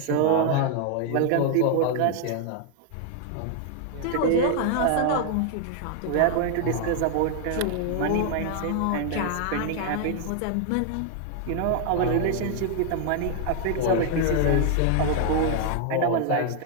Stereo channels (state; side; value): different; both; correlation 0.00